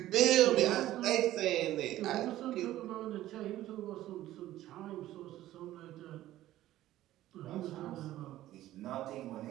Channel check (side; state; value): left; quieter; 14.4 dB